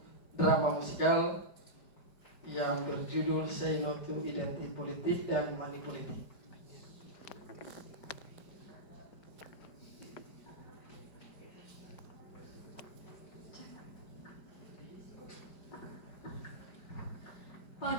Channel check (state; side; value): late; right; 5.0 ms